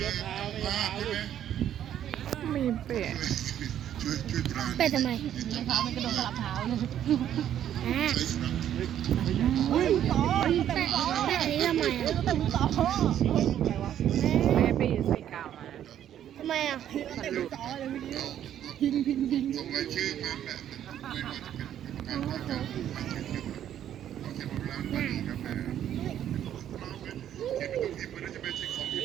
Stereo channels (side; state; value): left; quieter; 10.6 dB